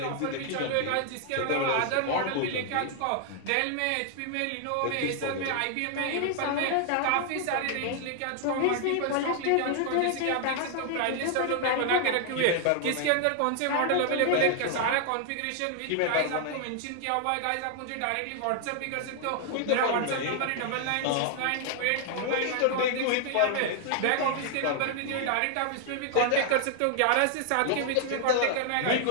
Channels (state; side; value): different; both; correlation 0.00